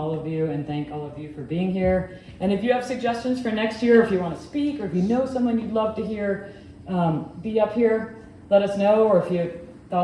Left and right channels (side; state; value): both; identical; correlation 1.00